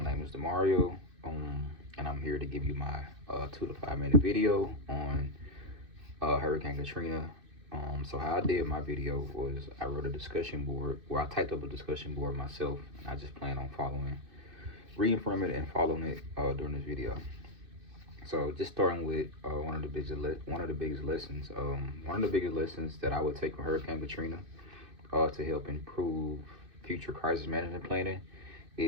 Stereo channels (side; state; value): left; late; 2.6 ms